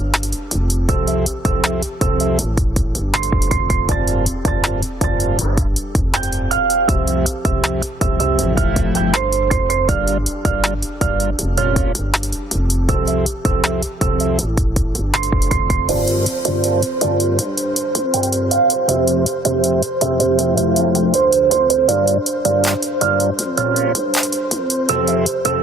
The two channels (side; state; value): both; normal; correlation 0.71